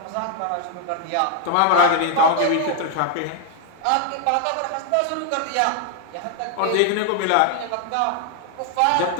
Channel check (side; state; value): both; different; correlation 0.00